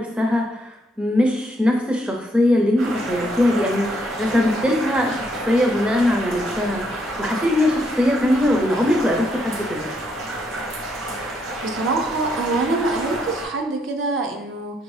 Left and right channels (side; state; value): both; normal; correlation 0.74